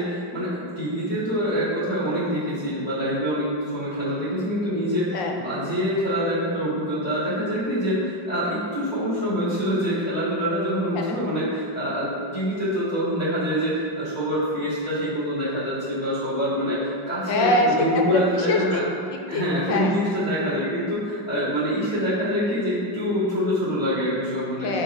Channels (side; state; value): right; late; 5.7 ms